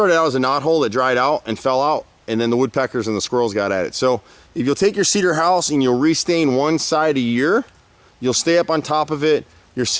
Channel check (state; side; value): identical; both; correlation 1.00